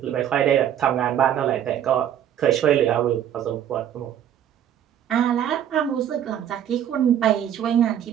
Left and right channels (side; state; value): left; quieter; 10.2 dB